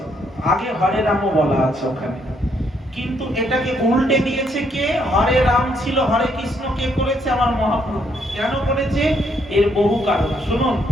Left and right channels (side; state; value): both; normal; correlation 0.72